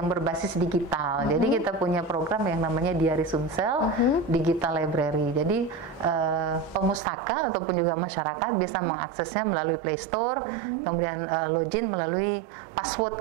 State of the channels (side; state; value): left; drops out; at 7.0 s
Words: berbasis digital. Jadi kita punya program yang namanya Diari Sumsel Digital Library. Jadi pemustaka ataupun juga masyarakat bisa mengaksesnya melalui Play Store, kemudian login melalui